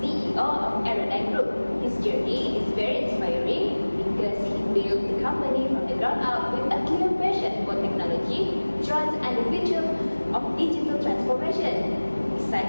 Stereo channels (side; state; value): both; inverted; correlation -1.00